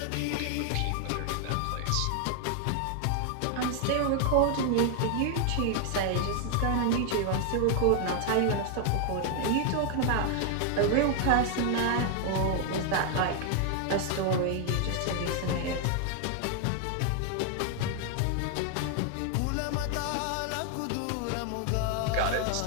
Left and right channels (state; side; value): different; both; correlation 0.00